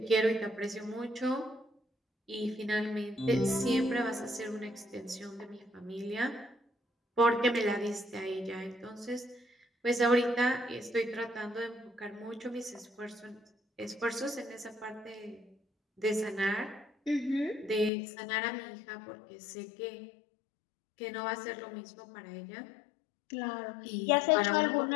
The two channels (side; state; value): right; drops out; at 17.9 s